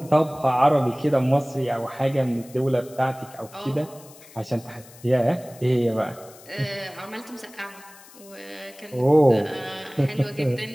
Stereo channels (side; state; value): left; noise; hiss, 22 dB below the sound